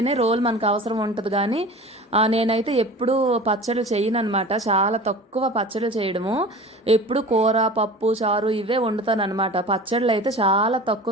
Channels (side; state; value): both; normal; correlation 0.38